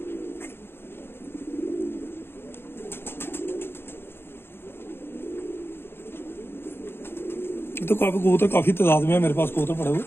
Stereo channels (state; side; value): late; right; 0.11 ms